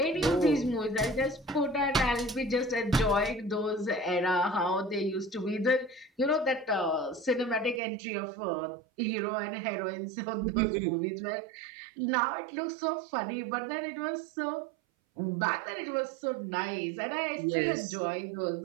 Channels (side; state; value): left; drops out; at 7.8 s